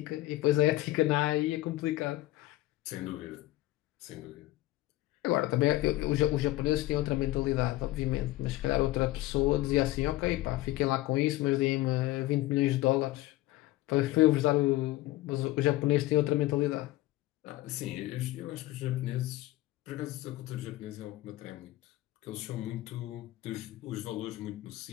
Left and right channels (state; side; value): quieter; right; 17.0 dB